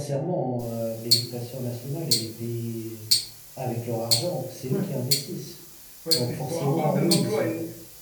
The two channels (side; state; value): both; identical; correlation 1.00